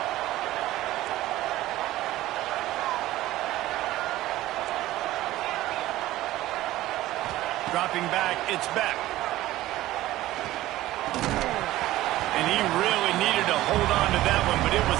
Dropping back, it's Beck. And he really needed to hold on to that one, but it was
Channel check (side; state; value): left; quieter; 15.9 dB